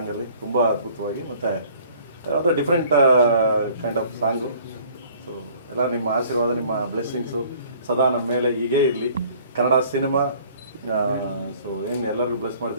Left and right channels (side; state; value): both; inverted; correlation -0.54